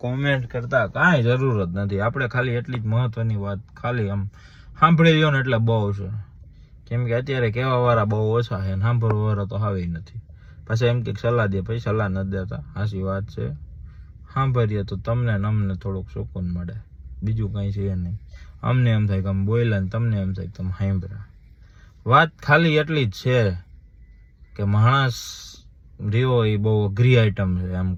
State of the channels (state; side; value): identical; both; correlation 1.00